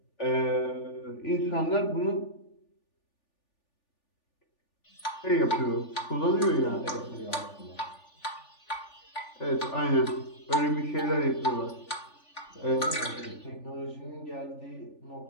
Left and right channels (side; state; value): right; late; 3.4 ms